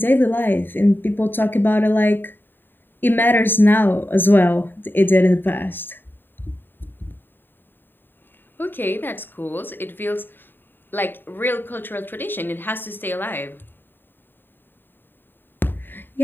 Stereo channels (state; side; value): late; right; 0.095 ms